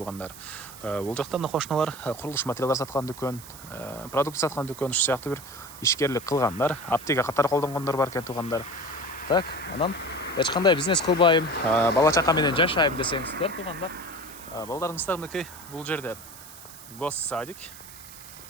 Бул жакта мына кошуналар курулуш материалдар саткан дүкөн, продукт саткан дүкөн, ушу сыяктуу бир ишкерлик кылгандар, аптека катары колдонгондор бар экен туугандар. Так, анан эч кандай бизнес кылбайм, бала чака менен жашайм десеңиздер туугандар, балдарыңыздар мынакей бул жерде госсадик,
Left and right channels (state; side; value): noise; right; hiss, 16 dB below the sound